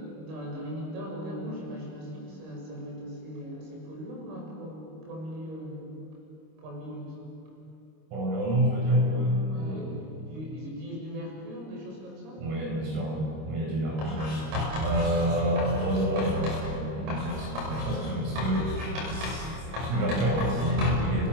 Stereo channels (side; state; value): left; late; 26 ms